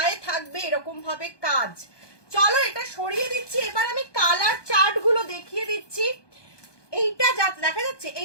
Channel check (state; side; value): late; right; 1.2 ms